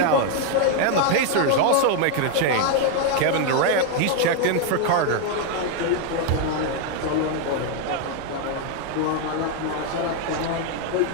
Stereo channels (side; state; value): both; different; correlation 0.01